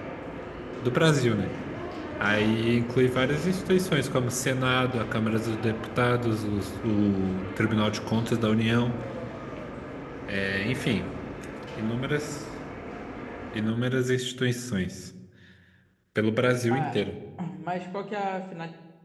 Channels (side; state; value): both; identical; correlation 1.00